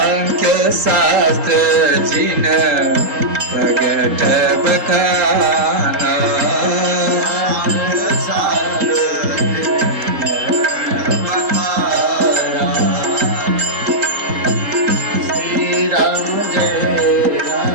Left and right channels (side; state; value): left; late; 3.8 ms